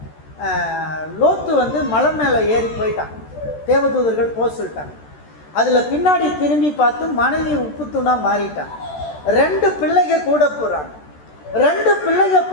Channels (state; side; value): late; right; 13 ms